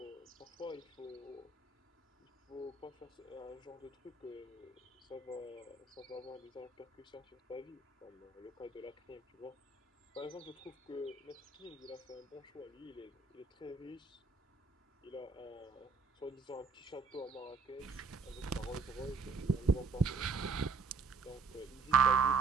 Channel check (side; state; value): left; quieter; 4.5 dB